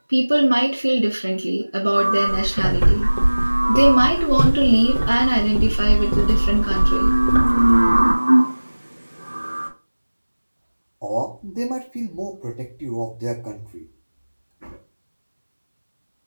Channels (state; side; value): inverted; both; correlation -1.00